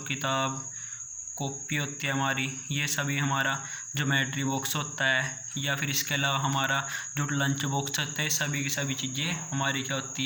कॉपी होती है हमारी, ये सभी हमारा ज्योमेट्री बॉक्स होता है, या फिर इसके अलावा हमारा जो लंच बॉक्स होता है, सभी की सभी चीज़ें हमारी क्या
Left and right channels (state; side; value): identical; both; correlation 1.00